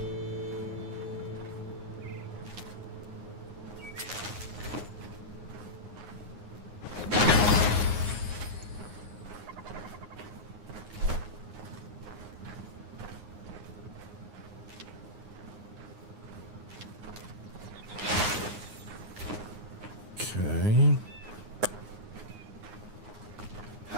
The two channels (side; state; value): left; late; 9.6 ms